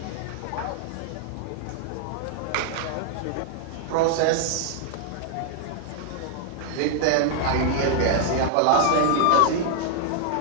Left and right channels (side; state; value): both; different; correlation 0.00